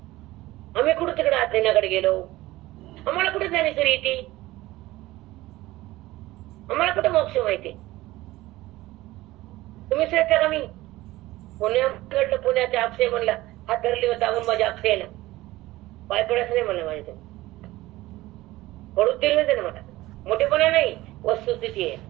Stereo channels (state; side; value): quieter; left; 17.8 dB